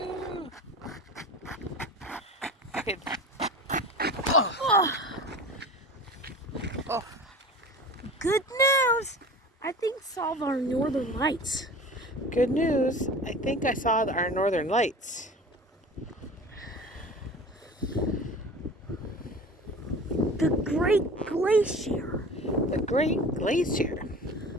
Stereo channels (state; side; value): normal; both; correlation 0.37